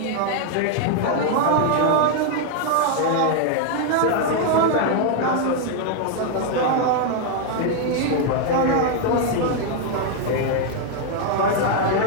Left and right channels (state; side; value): different; both; correlation 0.00